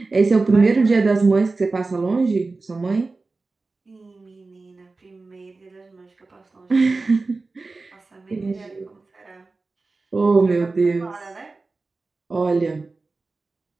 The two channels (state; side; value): quieter; left; 3.7 dB